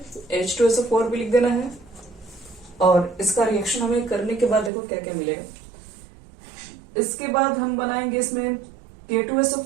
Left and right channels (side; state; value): left; drops out; at 4.7 s